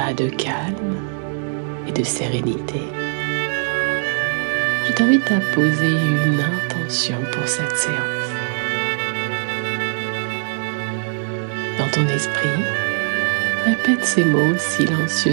de calme et de sérénité, je t'invite à poser une intention pour cette séance. Dans ton esprit, répète ces mots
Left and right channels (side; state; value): left; silent; 65 dB below the other